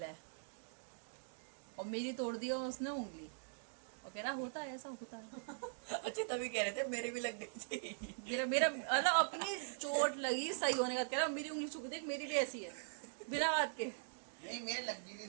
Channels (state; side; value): silent; left; digital silence